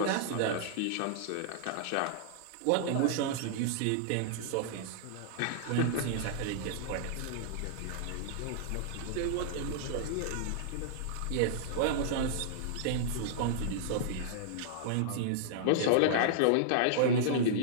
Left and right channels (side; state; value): both; different; correlation -0.01